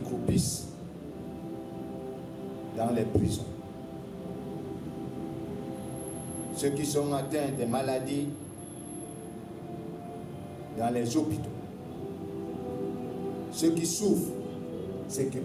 dans les prisons, ceux qui sont atteints de maladies dans les hôpitaux, ceux qui souffrent, ceux qui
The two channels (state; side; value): identical; both; correlation 1.00